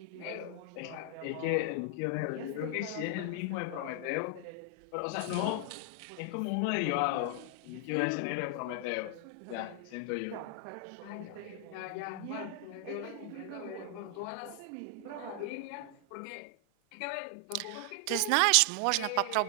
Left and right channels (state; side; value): different; both; correlation 0.00